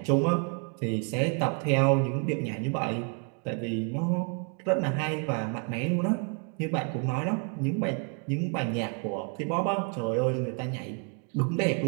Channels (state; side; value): quieter; left; 38.4 dB